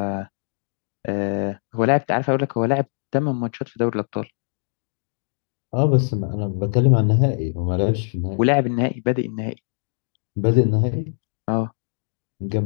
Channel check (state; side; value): silent; right; digital silence